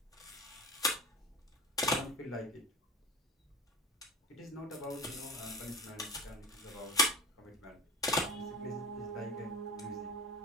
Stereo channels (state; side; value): normal; both; correlation 0.31